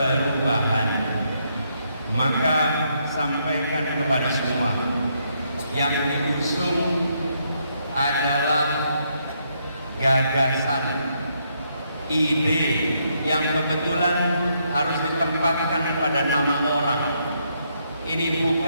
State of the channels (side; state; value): both; inverted; correlation -0.76